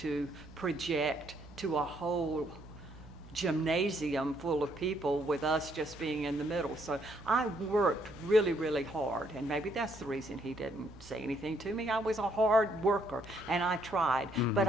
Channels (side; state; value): right; noise; hum, 19 dB below the sound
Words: project to a whole gymnasium full of people with us just being in the middle. So I worked really, really hard, and maybe that's the reason he didn't say anything to me. I was a hard worker, and I tried, but